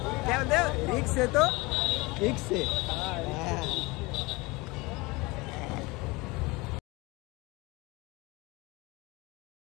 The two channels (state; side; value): quieter; right; 24.0 dB